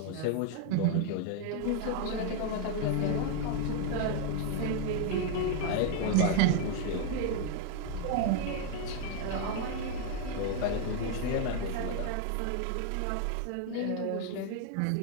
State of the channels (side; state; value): both; different; correlation 0.00